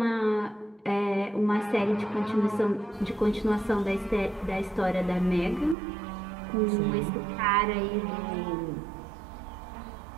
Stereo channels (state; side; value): drops out; left; at 5.8 s